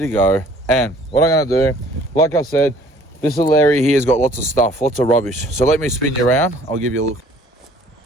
go. And what I'm going to do, like I said, this little area here has got lots of stuff, lots of rubbish. So let me spin you around. I'll give you a look.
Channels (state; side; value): normal; both; correlation 0.55